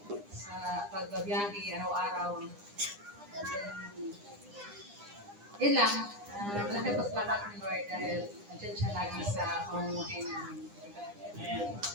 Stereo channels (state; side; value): late; left; 9.9 ms